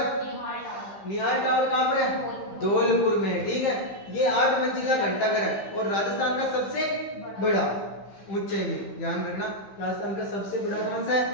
निहाल टावर कहाँ पर है? धौलपुर में। ठीक है, ये 8 मंजिला घंटाघर है और राजस्थान का सबसे बड़ा, ऊंचाई में, ध्यान रखना। राजस्थान का सबसे बड़ा कौन सा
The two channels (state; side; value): late; right; 15 ms